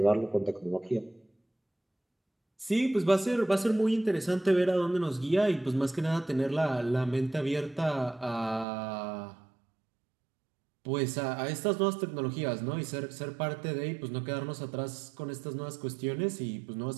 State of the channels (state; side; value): drops out; left; at 8.7 s